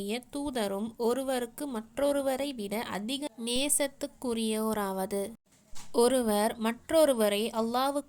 தூதரும் ஒருவருக்கு மற்றொருவரை விட அதிக நேசத்துக்குரியோராவது, ஒருவர் மற்றொருவரை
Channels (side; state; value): both; identical; correlation 1.00